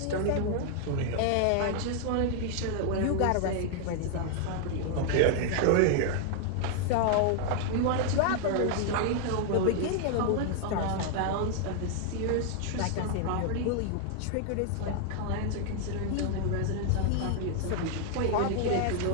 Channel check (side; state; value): both; different; correlation 0.00